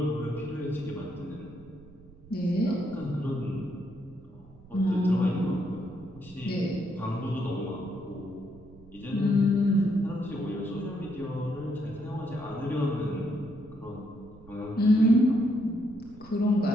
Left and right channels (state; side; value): noise; right; rumble, 22 dB below the sound